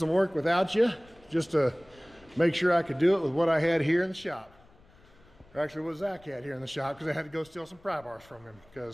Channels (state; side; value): noise; left; rumble, 28 dB below the sound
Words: work without you just to make sure I could do it with what I had here in the shop. Or actually what Zach had here in the shop, because I had to go steal some pry bars from him